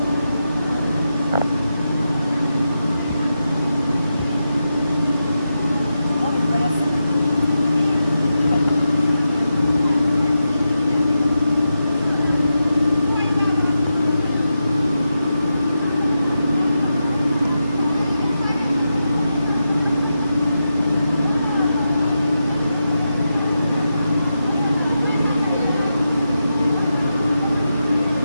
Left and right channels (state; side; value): inverted; both; correlation -0.88